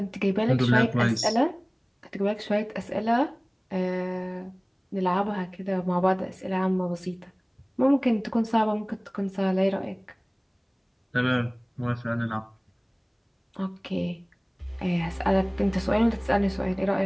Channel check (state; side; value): identical; both; correlation 1.00